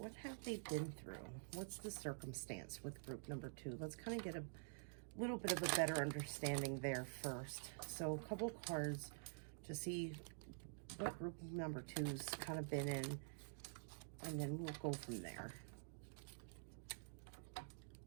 have they been through? What's the circumstance with group number 2? Let's kind of get a little bit of a better understanding there first. So a couple cards to see what group number 2's kind of been in, and then we'll go from there.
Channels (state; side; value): silent; left; digital silence